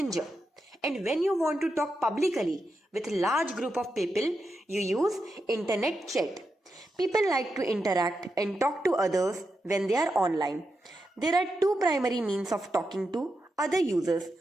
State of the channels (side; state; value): both; normal; correlation 0.87